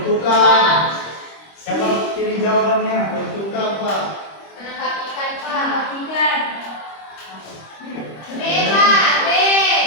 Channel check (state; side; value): late; right; 25 ms